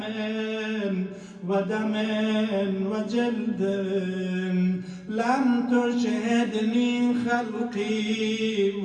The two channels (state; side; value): identical; both; correlation 1.00